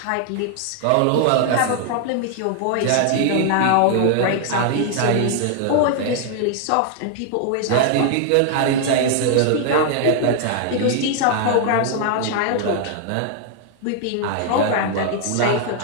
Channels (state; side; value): different; both; correlation 0.00